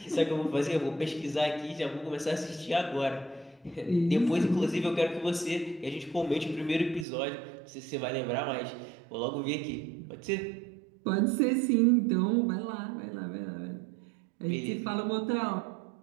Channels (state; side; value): drops out; left; at 7.1 s